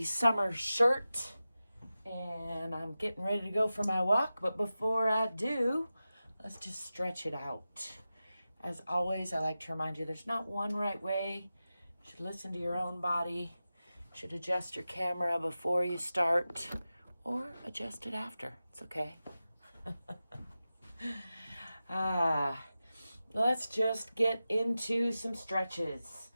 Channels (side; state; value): both; inverted; correlation -0.94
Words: summer shirt and I'm getting ready to go for my walk. But before I do, let's just stretch it out. As always, I like to remind you there's not one right way. You should listen to your own body. You should adjust your camera before you start or adjust it after. It's okay. Let's just get into some stretches.